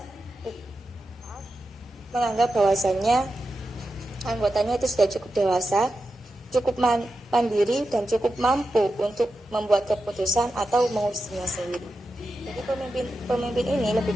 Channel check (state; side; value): normal; both; correlation 0.90